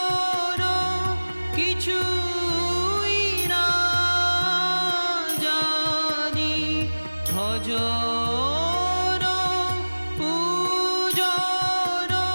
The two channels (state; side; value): inverted; both; correlation -1.00